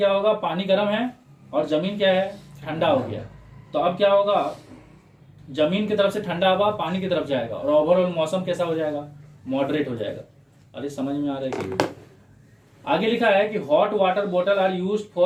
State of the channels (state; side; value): identical; both; correlation 1.00